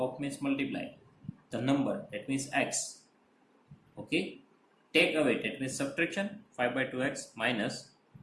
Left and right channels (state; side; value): identical; both; correlation 1.00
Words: means multiply the number that means x. Okay, take away that means subtraction 5 by 2x minus